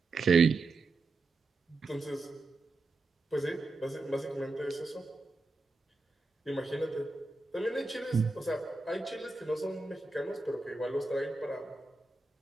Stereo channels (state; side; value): quieter; left; 3.3 dB